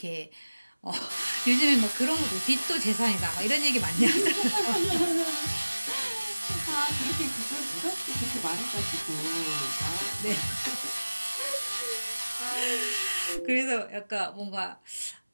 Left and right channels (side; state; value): both; inverted; correlation -1.00